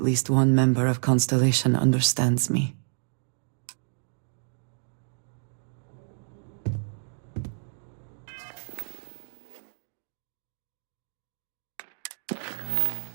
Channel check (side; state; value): left; silent; digital silence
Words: one member of Constellation understands me.